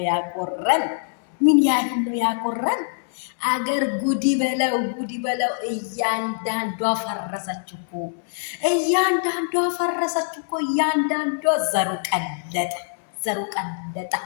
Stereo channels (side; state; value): right; silent; digital silence